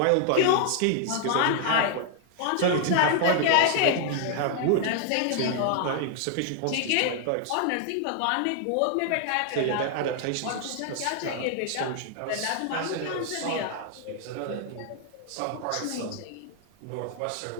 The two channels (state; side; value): different; both; correlation 0.00